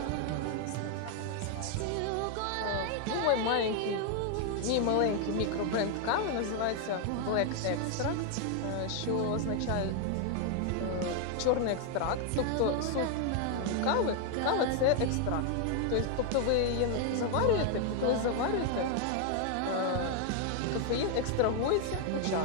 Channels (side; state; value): both; different; correlation 0.00